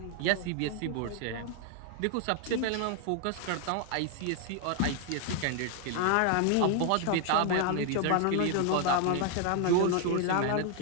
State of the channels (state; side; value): different; both; correlation 0.00